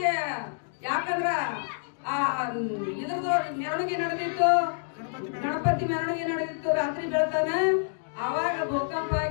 ಯಾಕಂದ್ರ ಇದ್ರದ್ದು ಮೆರವಣಿಗೆ ನಡೆದಿತ್ತು ಗಣಪತಿ ಮೆರವಣಿಗೆ ನಡೆದಿತ್ತು ರಾತ್ರಿ ಬೆಳತಾನ ಅವಾಗ ಭೂಕಂಪ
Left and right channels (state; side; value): silent; right; digital silence